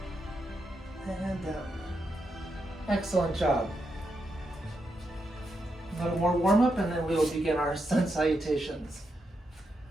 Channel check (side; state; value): both; normal; correlation 0.83